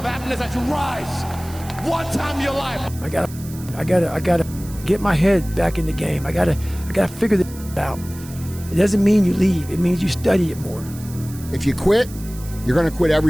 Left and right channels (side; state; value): right; noise; hiss, 18 dB below the sound